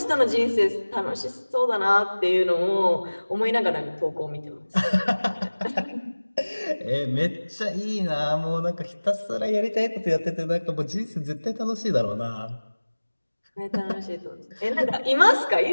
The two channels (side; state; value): both; inverted; correlation -1.00